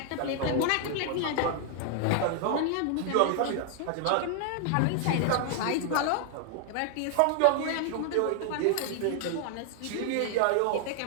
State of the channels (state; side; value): different; both; correlation 0.00